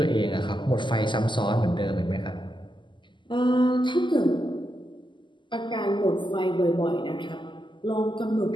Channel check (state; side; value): late; right; 0.23 ms